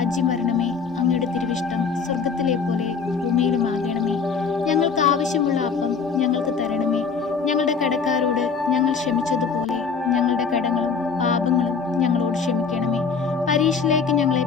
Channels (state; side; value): quieter; right; 5.5 dB